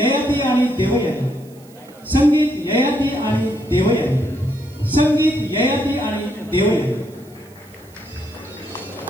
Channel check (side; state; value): right; noise; hiss, 27 dB below the sound